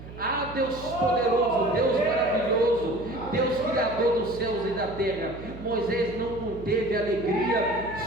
Ah, Deus poderoso, Deus maravilhoso, Deus criador dos céus e da terra. Moisés não conteve alegria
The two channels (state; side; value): noise; right; hum, 14 dB below the sound